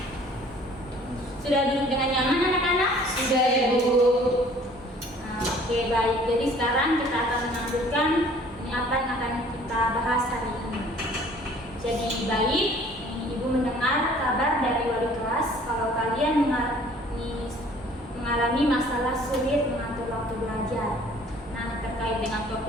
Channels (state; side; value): normal; both; correlation 0.53